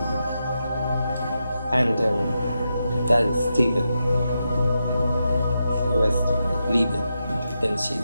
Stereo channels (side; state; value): both; inverted; correlation -0.86